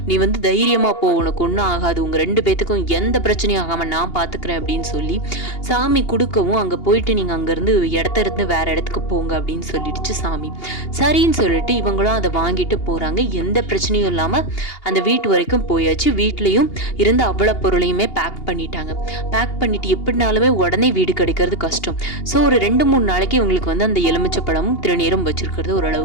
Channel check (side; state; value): right; late; 2.8 ms